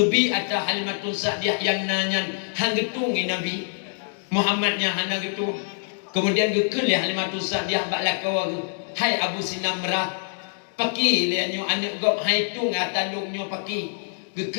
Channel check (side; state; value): right; silent; digital silence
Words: atau Halimatul Sa'diyah yang nanyan hang getung Nabi Muhammadnya hana getung. Kemudian gekel ya Halimatul Sa'diyah bak lakawa hai Abu Sinamrah paki lianyo anak gop hai tu ngatalungnya paki